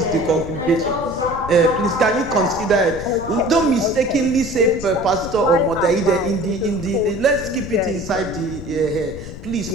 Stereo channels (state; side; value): noise; left; rumble, 12 dB below the sound